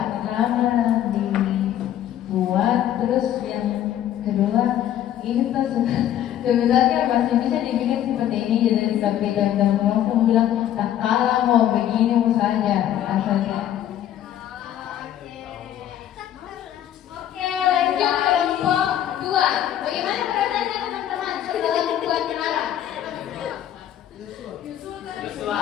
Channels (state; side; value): quieter; right; 11.3 dB